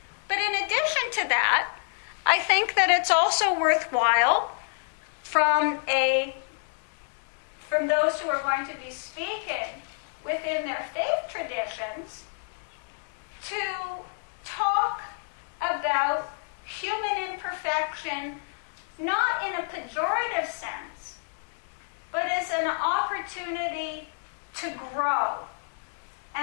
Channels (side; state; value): right; silent; 59 dB below the other